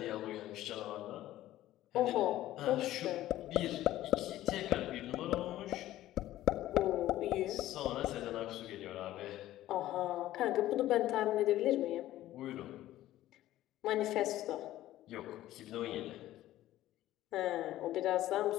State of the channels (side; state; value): right; quieter; 14.5 dB